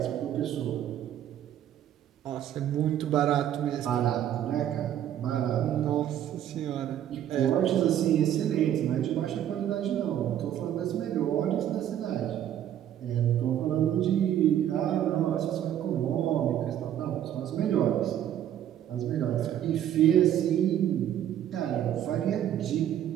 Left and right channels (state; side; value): quieter; left; 10.9 dB